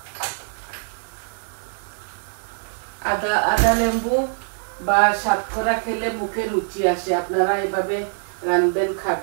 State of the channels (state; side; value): silent; left; 63 dB below the other